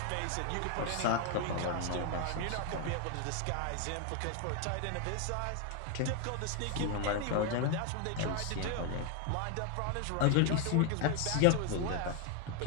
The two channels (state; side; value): different; both; correlation 0.01